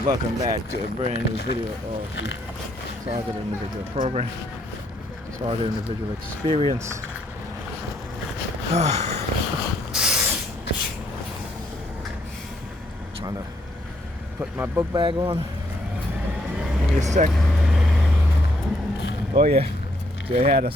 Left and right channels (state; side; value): normal; both; correlation 0.71